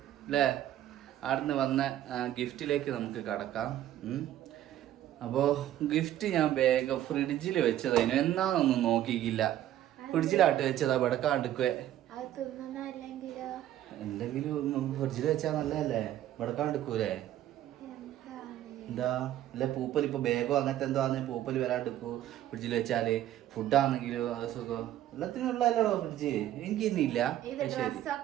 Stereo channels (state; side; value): quieter; left; 12.6 dB